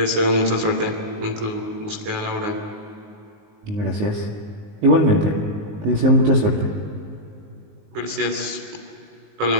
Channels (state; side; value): late; left; 19 ms